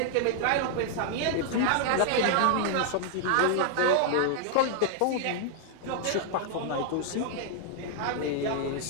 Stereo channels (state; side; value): different; both; correlation 0.00